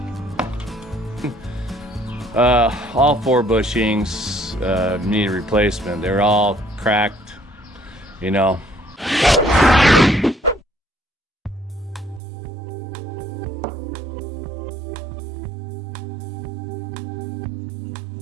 All 4 bushings need a replacement. They're all cracked, you know.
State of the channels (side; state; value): left; drops out; at 12.2 s